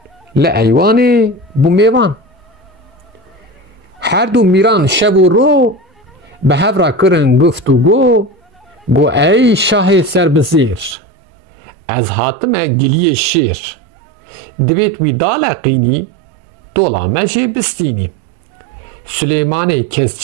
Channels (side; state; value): left; drops out; at 11.0 s